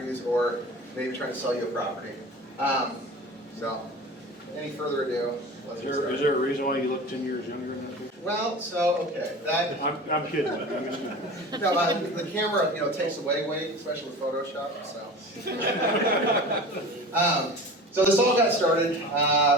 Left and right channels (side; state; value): both; normal; correlation 0.35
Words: or maybe trying to sell you a property. So, any further ado, let's get started. Is there a reason why you look 10 years younger than that picture? Well, so, okay, that, I'm kidding, but I'm just kidding. no, the camera, you know, takes away weight, especially with Photoshop, so. So this all got started,